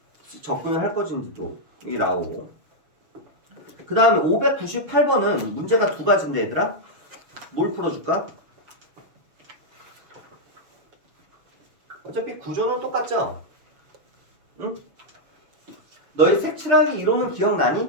접근을 할 것인지도 이게 나오고. 그 다음에 598번은 문제가 두 가지인데 얘들아. 뭘 풀어줄까? 어차피 구조는 똑같죠? 응? 너희 색칠하기 이론은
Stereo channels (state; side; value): late; left; 6.4 ms